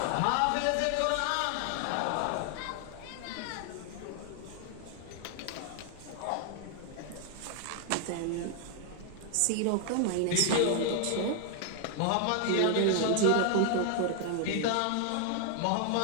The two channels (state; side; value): different; both; correlation 0.00